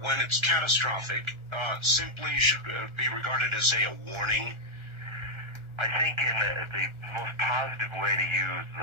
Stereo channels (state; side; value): late; left; 1.4 ms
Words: it's catastrophic, simply should be regarded as, say, a warning? I think in the most positive way to use